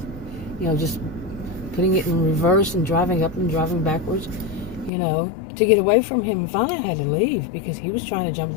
just putting it in reverse and driving up and driving backwards, to get away from him. And finally I had to leave because he was trying to jump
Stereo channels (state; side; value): drops out; right; at 4.9 s